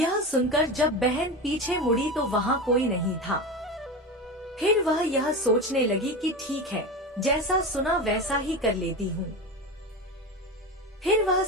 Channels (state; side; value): normal; both; correlation 0.24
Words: सुनकर जब बहन पीछे मुड़ी तो वहाँ कोई नहीं था। फिर वह यह सोचने लगी कि ठीक है, जैसा सुना वैसा ही कर लेती हूँ। फिर वह